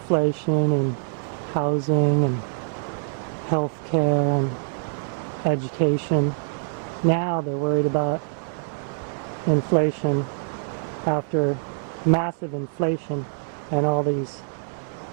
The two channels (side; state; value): left; silent; digital silence